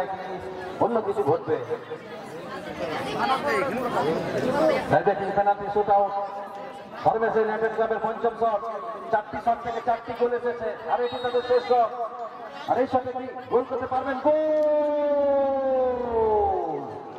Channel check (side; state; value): both; identical; correlation 1.00